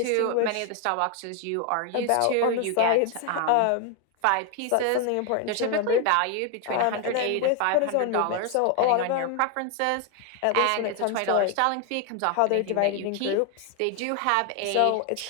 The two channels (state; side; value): different; both; correlation 0.01